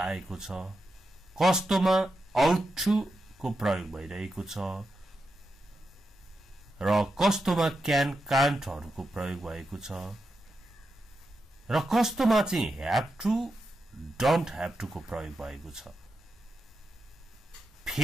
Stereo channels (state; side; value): normal; both; correlation 0.87